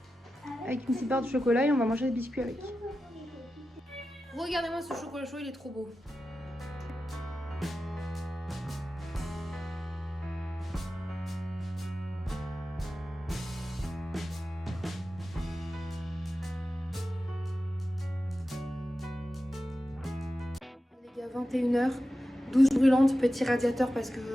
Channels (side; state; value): both; normal; correlation 0.93